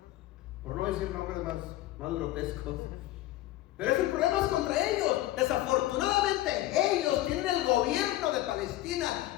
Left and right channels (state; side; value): quieter; right; 15.4 dB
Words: por no decir nombres más grotescos. Pero ese problema es contra ellos. Desafortunadamente ellos tienen el gobierno de Palestina